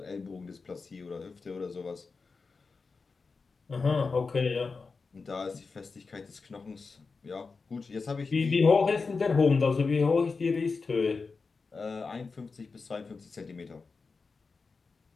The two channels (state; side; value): quieter; right; 4.5 dB